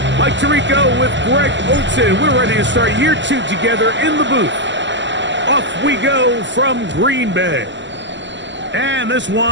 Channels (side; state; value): left; late; 0.53 ms